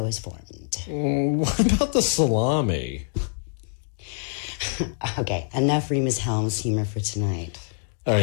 is formed. What about the salami? Okay, enough Remus Helms humor for tonight. All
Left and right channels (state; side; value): silent; right; digital silence